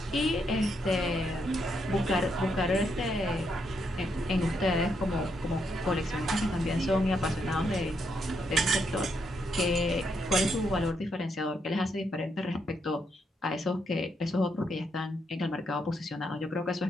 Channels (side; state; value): both; normal; correlation 0.78